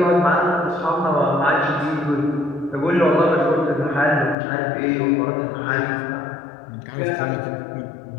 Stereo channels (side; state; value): right; drops out; at 4.4 s